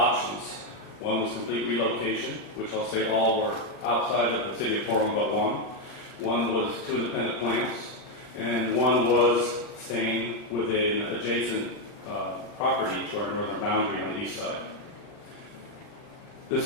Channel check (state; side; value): late; right; 40 ms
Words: One was complete relocation, which I'll say all were outside of the city of Portland but one. One was two independent plants, and one was staying within an adjacent property to our northern boundary on the east side.